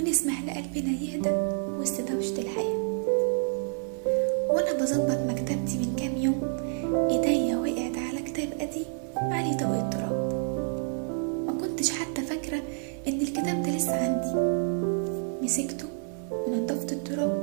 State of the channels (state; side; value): silent; left; 57 dB below the other